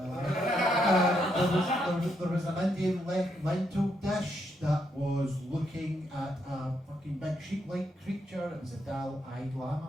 Lama. There was an Indian lentil dish that was looking at a fucking big sheep-like creature. It was a dull-eyed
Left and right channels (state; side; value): normal; both; correlation 0.77